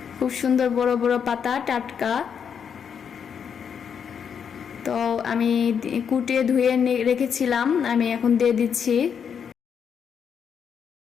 খুব সুন্দর বড় বড় পাতা, টাটকা। তো আমি কুটে ধুয়ে রেখেছিলাম, আমি এখন দিয়ে দিচ্ছি।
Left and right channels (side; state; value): right; quieter; 7.3 dB